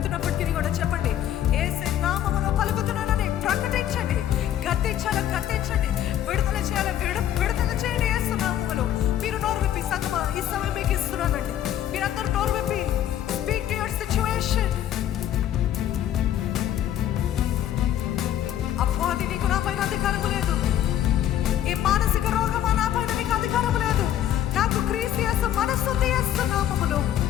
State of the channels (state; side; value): quieter; right; 11.3 dB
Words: కూడా చెప్పండి, యేసయ్య నామములో పలుకుతున్నానని ప్రకటించండి. గద్దించండి, విడుదల చేయాలి, విడుదల చేయండి యేసు నామములో. మీరు నోరు విప్పి సంగమా ఈ సమయం మీకు ఇస్తున్నానండి. మీరందరూ నోరు విప్పి స్పీక్ టు యువర్ సిచ్యువేషన్. అపవాది నీకు నా పైన అధికారం లేదు. ఈ మానసిక రోగమా నా పైన నీకు అధికారం లేదు. నాకు క్రీస్తు యేసు మనస్సు యేసు నామములో.